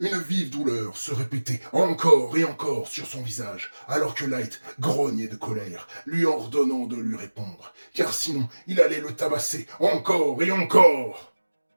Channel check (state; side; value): inverted; both; correlation -1.00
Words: vive douleur se répéter encore et encore sur son visage, alors que Light grognait de colère, lui ordonnant de lui répondre, car sinon il allait le tabasser encore et encore.